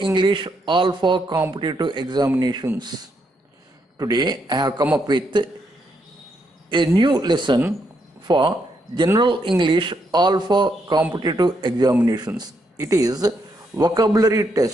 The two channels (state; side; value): normal; both; correlation 0.78